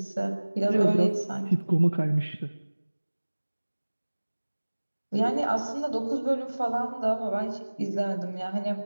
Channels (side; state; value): both; inverted; correlation -1.00